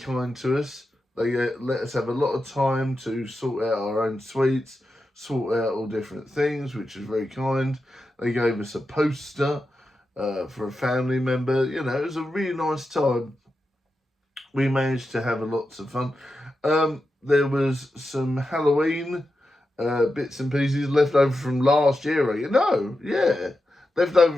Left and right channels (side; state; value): both; normal; correlation 0.89